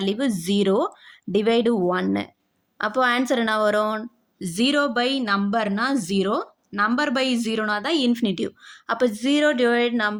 0 டிவைடு 1. அப்போது ஆன்சர் என்ன வரும், 0 பை நம்பர்னா 0, நம்பர் பை 0னா தான் இன்ஃபினிட்டிவ். அப்போ 0 டிவைட்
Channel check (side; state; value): both; identical; correlation 1.00